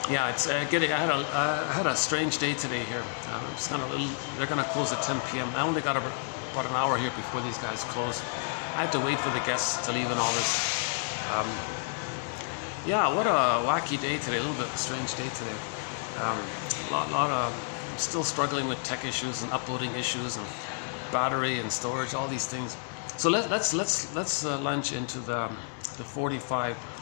Yeah, it's getting. I had a strange day today here. It's kind of they're going to close at 10 p.m. I only got about an hour here before these guys close. I had to wait for the guests to leave and all this. Yeah, what a wacky day today. A little bit of a strange day today. Lot of still struggling with tech issues and uploading issues and battery and storage, all these things. So let's launch into the 45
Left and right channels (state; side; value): silent; right; 58 dB below the other